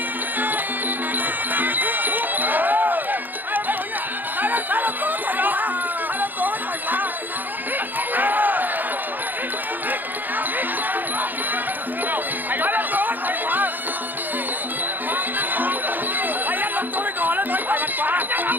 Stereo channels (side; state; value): left; late; 0.087 ms